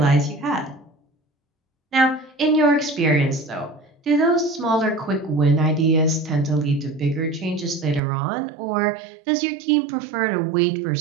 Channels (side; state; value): left; drops out; at 8.0 s